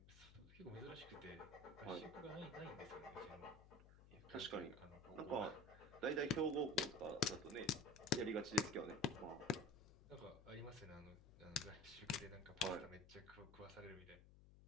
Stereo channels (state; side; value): noise; left; hum, 19 dB below the sound